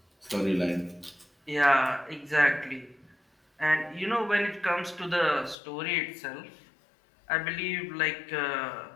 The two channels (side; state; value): right; drops out; at 5.6 s